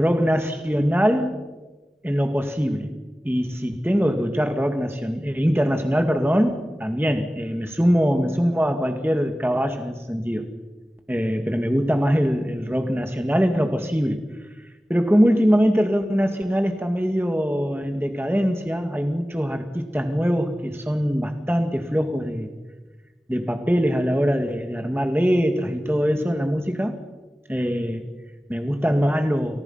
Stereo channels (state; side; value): normal; both; correlation 0.95